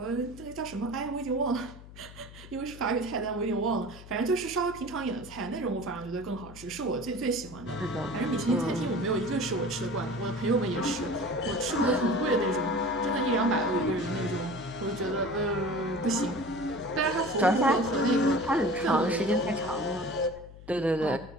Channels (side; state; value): left; noise; hum, 17 dB below the sound